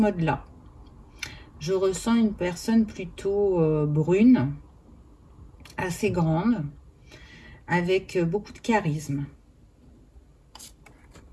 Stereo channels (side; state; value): both; identical; correlation 1.00